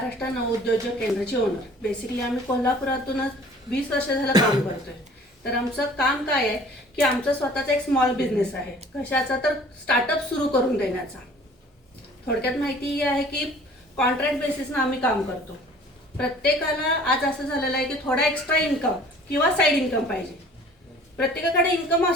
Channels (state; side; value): normal; both; correlation 0.50